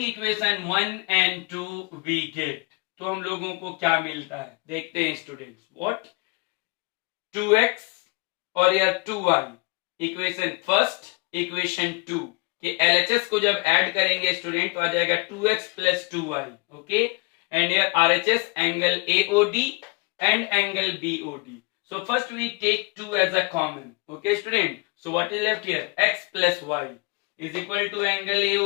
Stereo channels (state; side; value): quieter; right; 29.1 dB